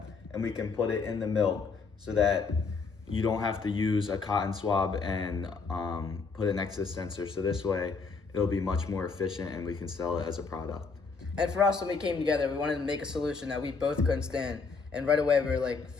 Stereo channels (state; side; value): quieter; right; 4.8 dB